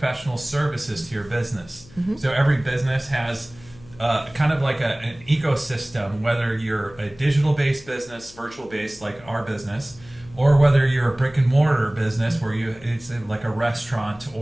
services to your business. Mm-hmm. So every business has kind of like an ecosystem, whether you're a digital-based business, virtual-based like our business, or whether you're a brick and mortar business where it's like a restaurant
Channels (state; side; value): noise; left; hum, 22 dB below the sound